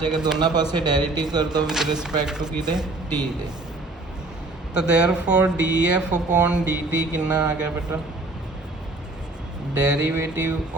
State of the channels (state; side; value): quieter; left; 3.0 dB